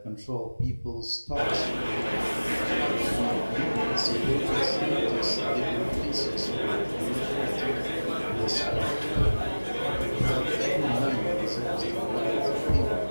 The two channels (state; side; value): inverted; both; correlation -1.00